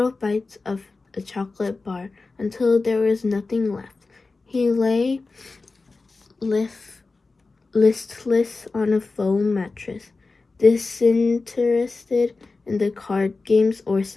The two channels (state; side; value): quieter; right; 3.8 dB